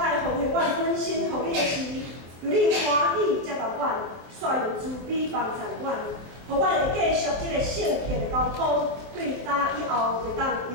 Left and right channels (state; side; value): late; left; 24 ms